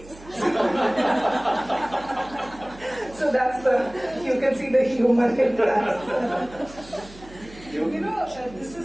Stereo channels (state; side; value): noise; right; hum, 20 dB below the sound